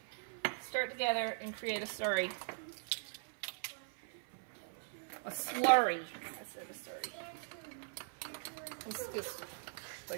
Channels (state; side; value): silent; left; 51 dB below the other